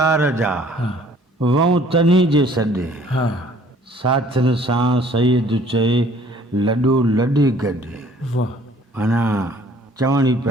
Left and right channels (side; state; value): both; normal; correlation 0.56